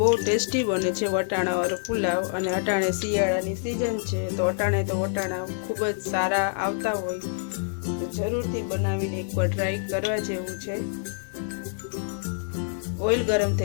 ટેસ્ટી બને છે વટાણાવાળો પુલાવ અને અટાણે શિયાળાની સિઝન છે તો અટાણે તો વટાણા ખૂબ જ સારા આવતા હોય તો જરૂરથી બનાવીને એકવાર ટ્રાય કરવા જેવું છે। ઓઇલ ગરમ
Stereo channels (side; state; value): right; silent; digital silence